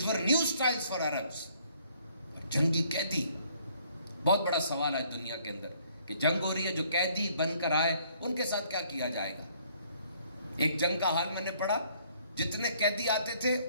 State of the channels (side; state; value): both; inverted; correlation -0.64